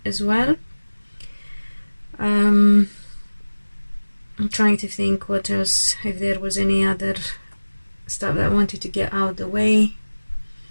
as well. I'm trying to think what else, if there was any other stuff that I wanted to get out of the way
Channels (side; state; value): both; inverted; correlation -1.00